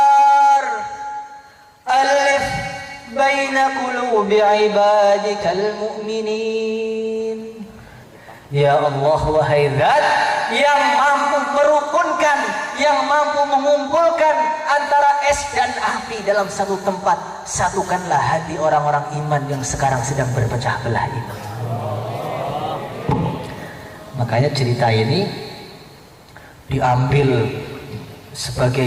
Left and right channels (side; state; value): both; identical; correlation 1.00